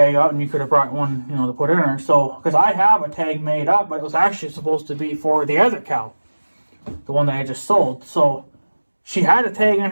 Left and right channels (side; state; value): both; inverted; correlation -1.00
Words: out, and you could have brought one, to put in her. So, because I have a tag made up, but it was actually supposed to be for the other cow, the one that I just sold. So she had a tag in